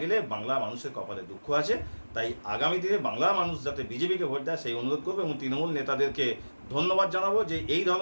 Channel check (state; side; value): inverted; both; correlation -1.00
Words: বাংলা মানুষের কপালে দুঃখ আছে। তাই আগামী দিনে বাংলা মানুষ যাতে বিজেপিকে ভোট দেয় সেই অনুরোধ করবে এবং তৃণমূল নেতাদেরকে ধন্যবাদ জানাবো যে এই